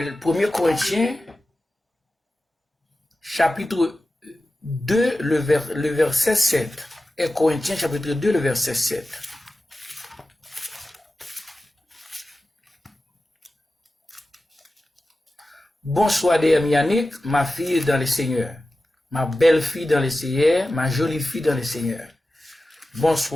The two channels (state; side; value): normal; both; correlation 0.94